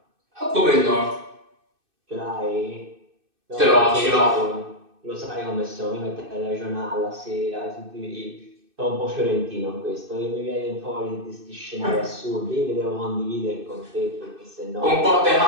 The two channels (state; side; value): late; left; 2.6 ms